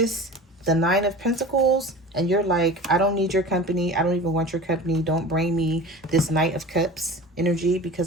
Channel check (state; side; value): normal; both; correlation 0.36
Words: the Nine of Pentacles, and you're like, I don't need your company. I don't even want your company. Don't bring me this Knight of Cups energy